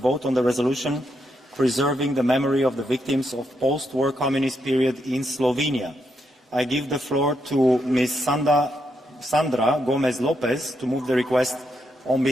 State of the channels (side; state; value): both; normal; correlation 0.80